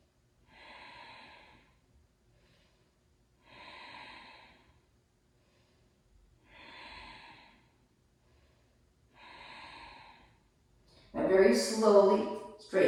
now very slowly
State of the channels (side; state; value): both; identical; correlation 1.00